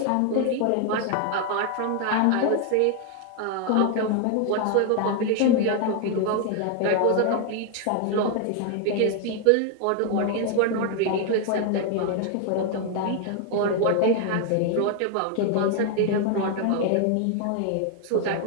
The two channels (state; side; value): different; both; correlation 0.00